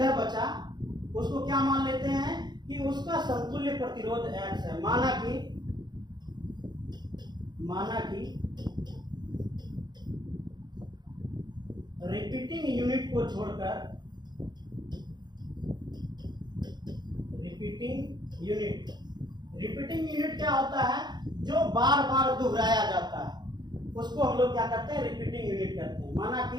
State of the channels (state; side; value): late; left; 0.21 ms